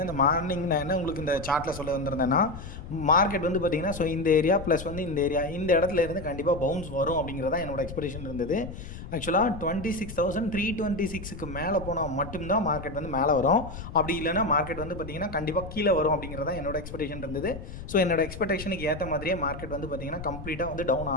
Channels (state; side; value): noise; left; rumble, 11 dB below the sound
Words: இந்த மார்னிங் நான் என்ன உங்களுக்கு இந்த சார்ட்டில் சொல்ல வந்திருந்தேன்னா, மார்க்கெட் பார்த்திங்கன்னா ஸோ இந்த ஏரியா ப்ளஸ் இந்த ஏரியா இந்த இடத்துல இருந்து கண்டிப்பாக பவுன்ஸ் வரும் அப்படிங்கிறதா என்னோட எக்ஸ்பெக்டேஷன் இருந்தது. ஆக்சுவலாக 26,326க்கு மேலே போனால் மட்டும்தான் மார்க்கெட் மேலே வரும். அப்படி இல்லைனா மார்க்கெட் பார்த்திங்கன்னா கண்டிப்பாக கீழே வரும் அப்படிங்கிறதா என்னோட எக்ஸ்பெக்டேஷன் இருந்தது. ஸோ என்னோட எக்ஸ்பெக்டேஷனுக்கு ஏற்ற மாதிரியே மார்க்கெட் பார்த்திங்கன்னா கம்ப்ளீட்டாக டவுன்